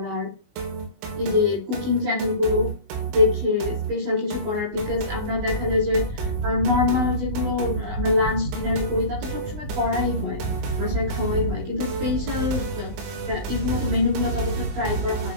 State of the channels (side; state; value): left; late; 19 ms